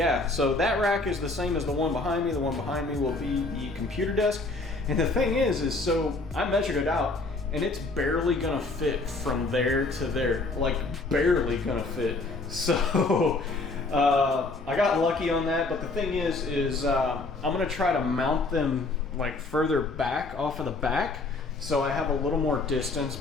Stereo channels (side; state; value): right; quieter; 3.3 dB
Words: so that rack is the same as the one behind me. The one behind me will be the computer desk. And the thing is so I measured it out, and it's barely gonna fit from there to there. Like, barely gonna fit. So, I got lucky on that, but the thing is I'm gonna try to mount them like further back off of the back, so I have a little more distance